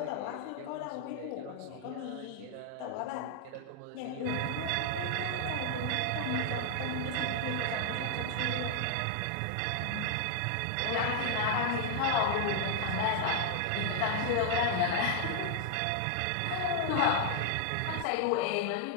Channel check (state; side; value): different; both; correlation 0.00